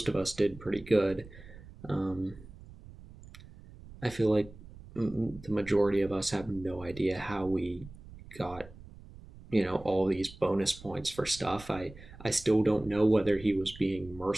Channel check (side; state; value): right; noise; rumble, 18 dB below the sound